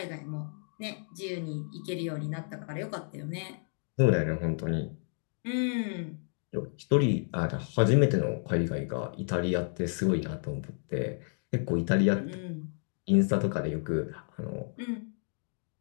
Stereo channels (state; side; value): silent; right; 57 dB below the other